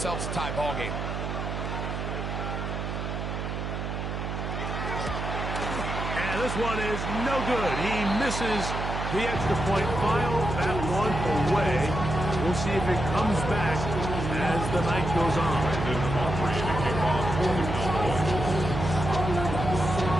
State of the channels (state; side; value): noise; right; hum, 4 dB below the sound